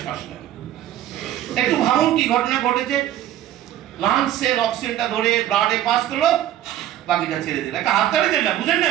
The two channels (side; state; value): left; quieter; 12.2 dB